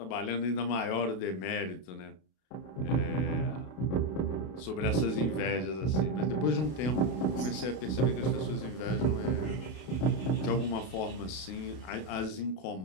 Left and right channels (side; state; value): right; late; 32 ms